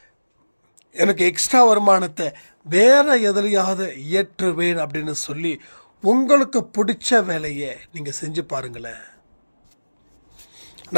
எனக்கு எக்ஸ்ட்ரா வருமானத்தை வேறு எதுலையாவது இயற்றுவேன் அப்படின்னு சொல்லி உங்களுக்கு பிடிச்ச வேலையை நீங்கள் செஞ்சு பாருங்களேன்.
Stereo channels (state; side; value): inverted; both; correlation -1.00